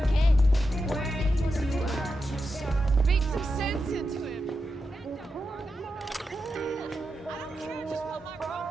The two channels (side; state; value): both; normal; correlation 0.88